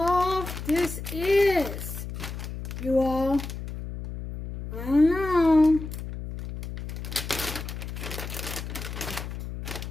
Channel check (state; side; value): noise; left; hum, 8 dB below the sound